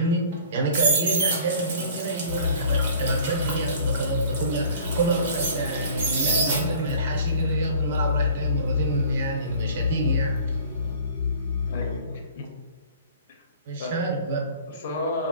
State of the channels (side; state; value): both; inverted; correlation -0.48